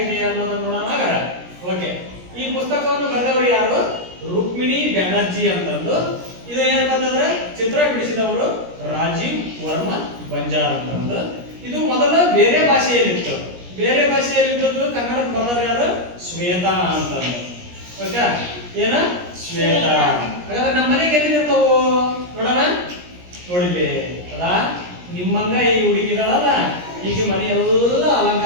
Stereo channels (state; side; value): late; left; 17 ms